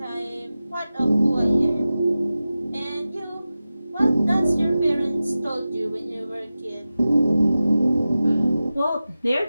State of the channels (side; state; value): both; inverted; correlation -0.95